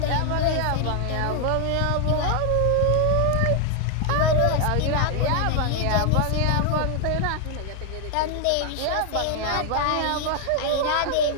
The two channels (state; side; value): different; both; correlation 0.00